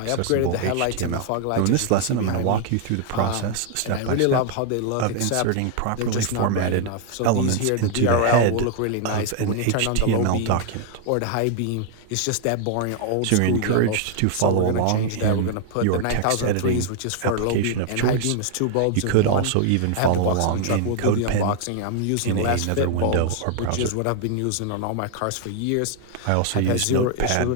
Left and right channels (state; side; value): different; both; correlation 0.00